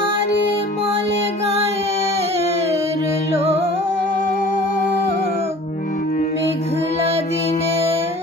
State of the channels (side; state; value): both; normal; correlation 0.45